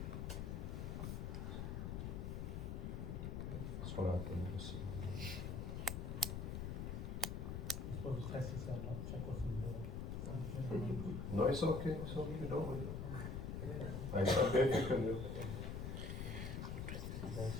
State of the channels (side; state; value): left; noise; rumble, 3 dB below the sound